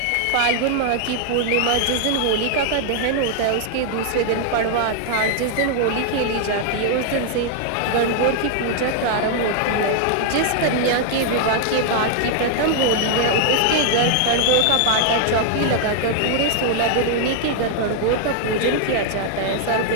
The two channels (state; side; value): different; both; correlation 0.00